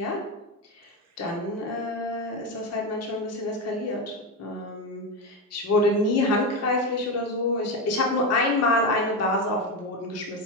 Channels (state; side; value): normal; both; correlation 0.13